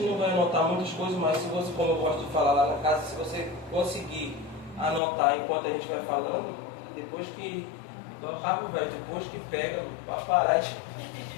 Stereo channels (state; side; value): drops out; right; at 5.0 s